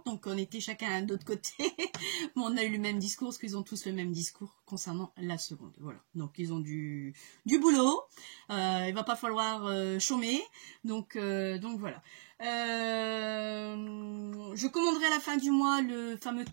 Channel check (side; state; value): left; silent; digital silence